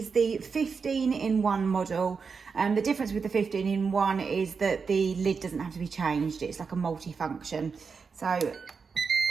the 15-in-1 model. The difference with the 15-in-1 is that the lid doesn't have to be changed. It's like a multi-function. So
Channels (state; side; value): quieter; left; 5.4 dB